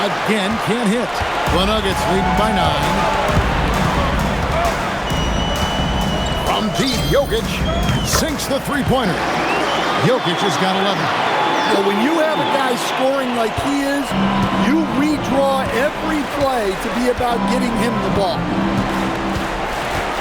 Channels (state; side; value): identical; both; correlation 1.00